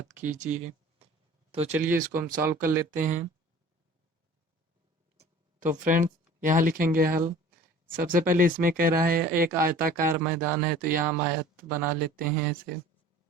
कीजिए। तो चलिए इसको हम सॉल्व कर लेते हैं। तो फ्रेंड्स, यहाँ लिखेंगे हल। सबसे पहले इसमें कह रहा है एक आयताकार मैदान है, तो यहाँ हम आयत बना लेते हैं ऐसे।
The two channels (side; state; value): both; normal; correlation 0.46